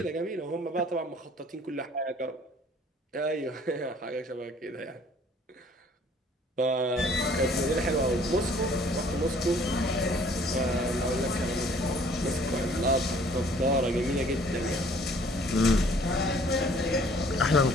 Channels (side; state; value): both; normal; correlation 0.56